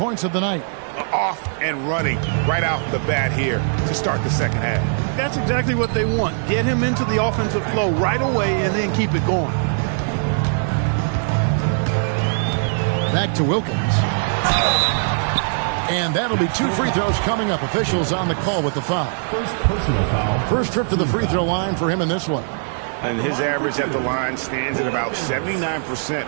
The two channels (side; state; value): left; silent; digital silence